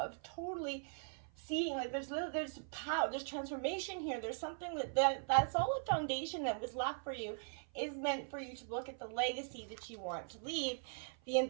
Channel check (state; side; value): silent; left; 51 dB below the other